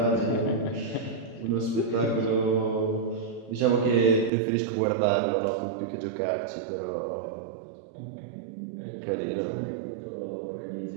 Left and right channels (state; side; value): drops out; left; at 4.3 s